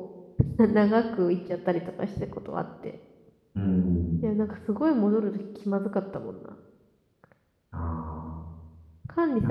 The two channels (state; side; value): identical; both; correlation 1.00